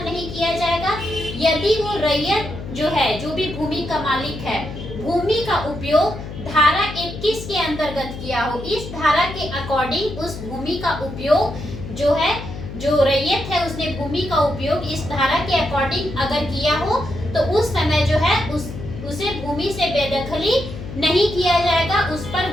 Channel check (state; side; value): noise; left; hum, 10 dB below the sound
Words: नहीं किया जाएगा, यदि वो रैयत जो है, जो भी भूमि का मालिक है, भूमि का उपयोग धारा 21 के अंतर्गत किया हो, इस धारा के अकॉर्डिंग उस भूमि का उपयोग जो है, जो रैयत है उसने भूमि का उपयोग इस धारा के अकॉर्डिंग अगर किया हो, तो उस समय जो है उसे भूमि से बेदखली नहीं किया जाएगा, उस पर